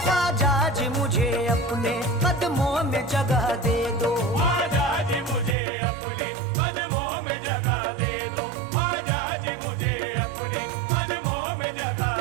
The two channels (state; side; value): drops out; left; at 5.6 s